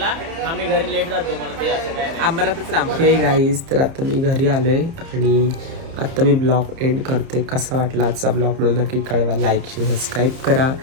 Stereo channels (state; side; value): late; left; 30 ms